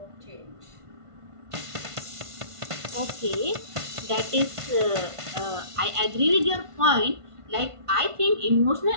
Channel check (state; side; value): late; left; 1.5 ms